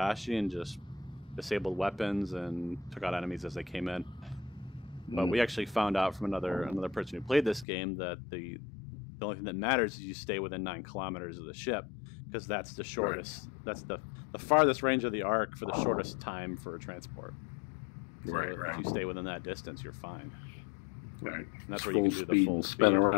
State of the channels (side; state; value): right; drops out; at 7.7 s